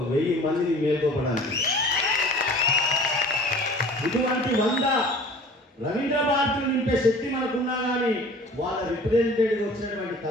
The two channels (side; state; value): both; normal; correlation 0.45